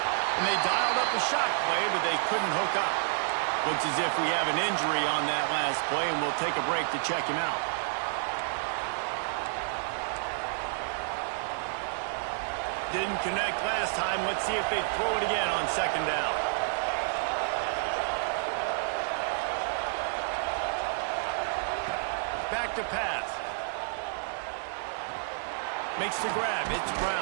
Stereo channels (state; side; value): silent; left; 58 dB below the other